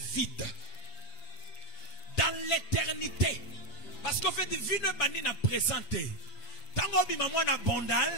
vide, dans l'éternité, parce qu'en fait, Vino Bani n'a présenté. Tango Bimamwa na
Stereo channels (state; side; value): late; right; 6.9 ms